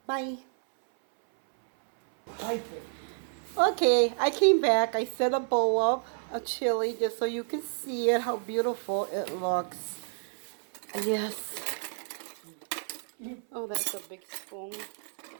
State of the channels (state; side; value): silent; left; 58 dB below the other